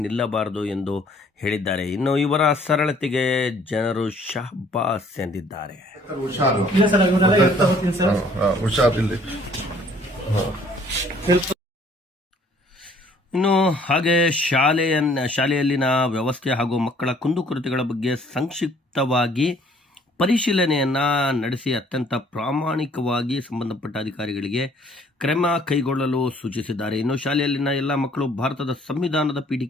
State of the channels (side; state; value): both; normal; correlation 0.59